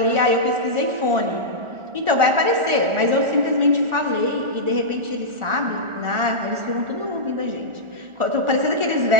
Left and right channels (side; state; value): left; late; 1.4 ms